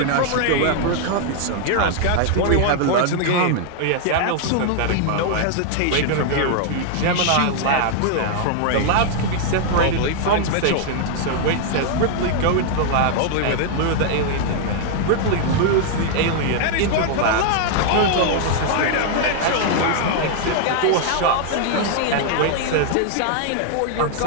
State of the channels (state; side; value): different; both; correlation 0.00